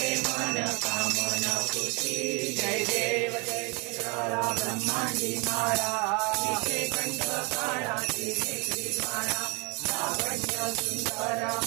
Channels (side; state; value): left; quieter; 30.6 dB